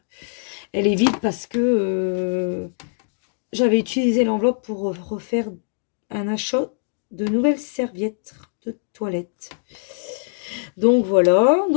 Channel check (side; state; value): right; silent; digital silence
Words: Elle est vide parce que j'avais utilisé l'enveloppe pour refaire un achat de nouvelles serviettes de toilette. Donc, voilà.